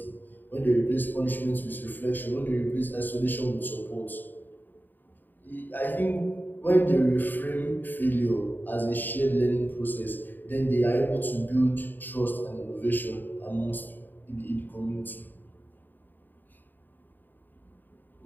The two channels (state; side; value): late; right; 0.090 ms